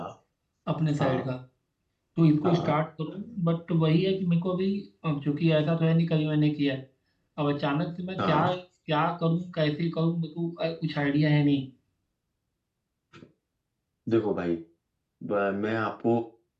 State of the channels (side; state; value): both; identical; correlation 1.00